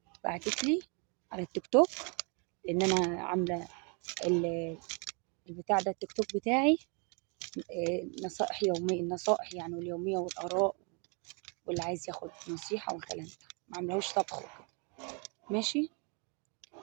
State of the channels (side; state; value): left; quieter; 35.2 dB